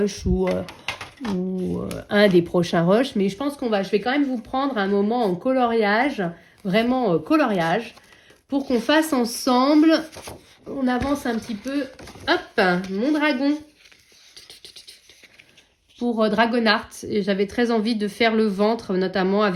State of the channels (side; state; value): both; identical; correlation 1.00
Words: ou un des prochains rushs, mais je pense je vais quand même vous prendre un moment en coloriage, vraiment coloriage, pour qu'on fasse ensemble, on avance un petit peu, hop, mon dragon, pour Dragonart. Et j'avais très envie de faire le ventre, notamment